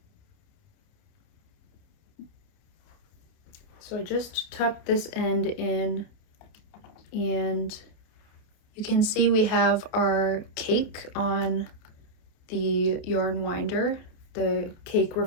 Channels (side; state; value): right; late; 29 ms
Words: So I just tucked this end in, and you can see we have our cake on the yarn winder. The cake